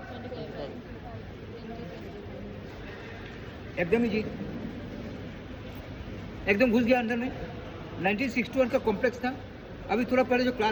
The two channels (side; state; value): both; identical; correlation 1.00